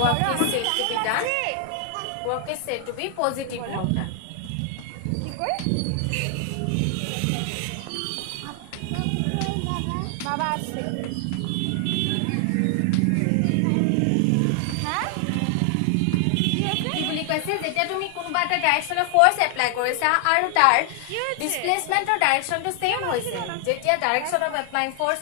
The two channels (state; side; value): different; both; correlation 0.00